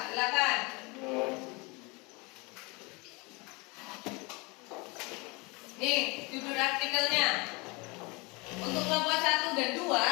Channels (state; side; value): quieter; right; 27.2 dB